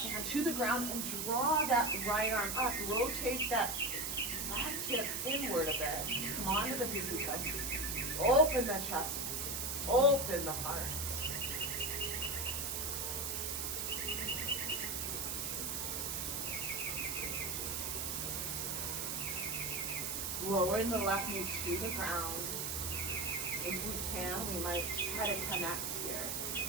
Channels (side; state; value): right; noise; hiss, 1 dB below the sound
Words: to the ground and draw that right arm up. Rotate that left hip inward a bit. Come on to the pinky toe. Open the chest. Open the heart. Lowering the left knee to the ground. If we can, we might try to connect here.